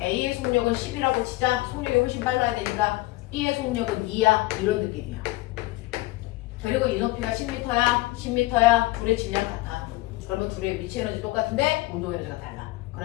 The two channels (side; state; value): right; quieter; 19.7 dB